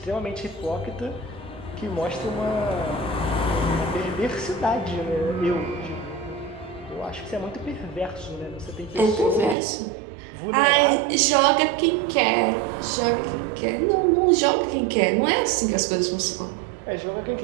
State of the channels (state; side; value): drops out; left; at 9.6 s